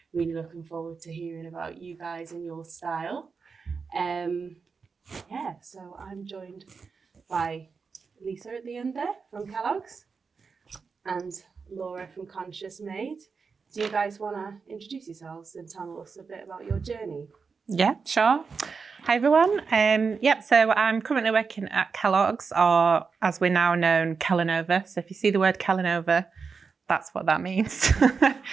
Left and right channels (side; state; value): left; quieter; 5.2 dB